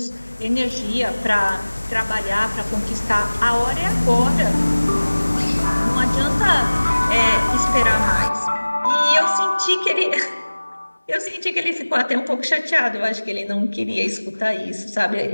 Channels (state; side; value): inverted; both; correlation -1.00